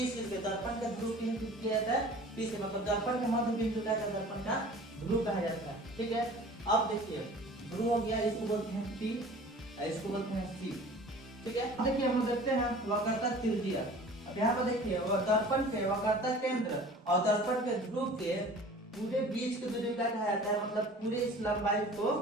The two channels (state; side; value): normal; both; correlation 0.44